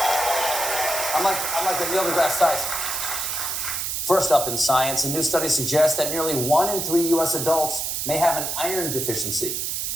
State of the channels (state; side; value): noise; right; hiss, 2 dB below the sound